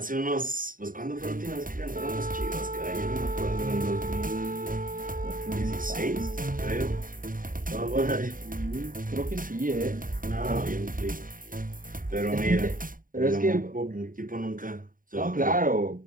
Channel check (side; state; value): left; late; 0.40 ms